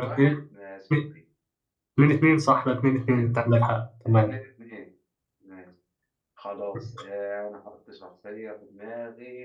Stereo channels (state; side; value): identical; both; correlation 1.00